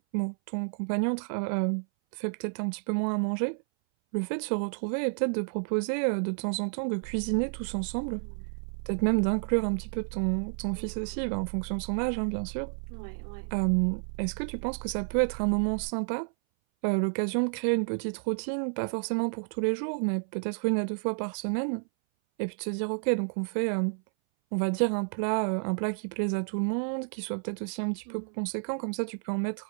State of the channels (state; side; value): silent; left; 58 dB below the other